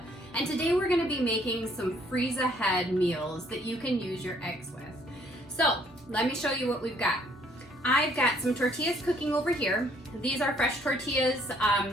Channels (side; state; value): both; normal; correlation 0.63